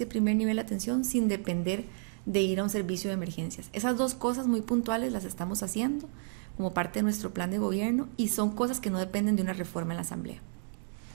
primer nivel de atención sin depender de ir a un servicio de emergencias. Esas dos cosas muy puntuales las estamos haciendo como parte de nuestro plan de gobierno y son cosas que no dependen de una reforma en la Asamblea.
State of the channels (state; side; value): silent; left; 57 dB below the other